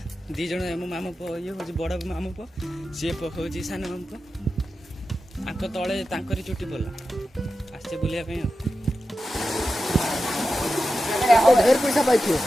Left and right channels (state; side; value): normal; both; correlation 0.92